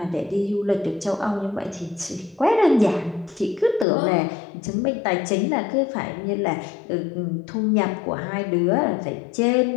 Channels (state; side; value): drops out; right; at 3.9 s